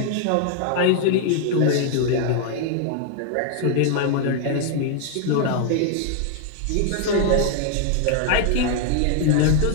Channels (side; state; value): both; different; correlation 0.00